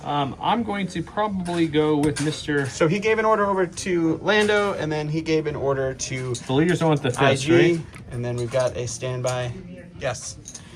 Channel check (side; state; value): both; identical; correlation 1.00